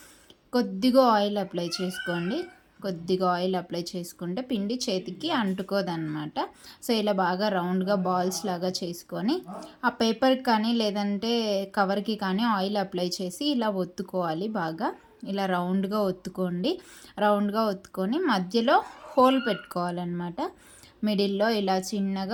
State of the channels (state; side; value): identical; both; correlation 1.00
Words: కొద్దిగా ఆయిల్ అప్లై చేసుకోండి. కొద్దిగా ఆయిల్ అప్లై చేసుకుంటే పిండి చేతికి అంటుకోదన్నమాట. సో ఇలా బాగా రౌండ్గా బాల్స్ లాగా చేసుకొని ఆ పేపర్కి కానీ లేదంటే కవర్కి కానీ ఆయిల్ అప్లై చేసి ఇలా ఒత్తుకోవాలి. బాగా ఇలా రౌండ్గా ఒత్తుకోండి. రౌండ్గా ఒత్తుకొని మధ్యలో హోల్ పెట్టుకోవాలన్నమాట. మిడిల్లో ఇలా